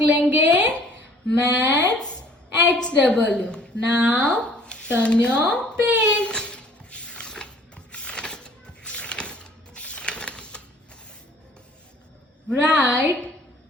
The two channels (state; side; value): normal; both; correlation 0.55